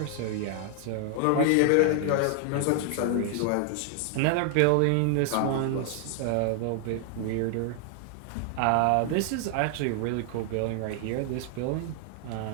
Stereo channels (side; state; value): both; different; correlation 0.00